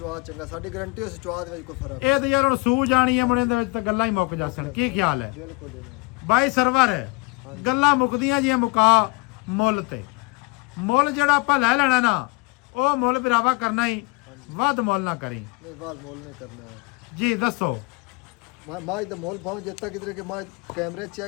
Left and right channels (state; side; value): quieter; right; 27.3 dB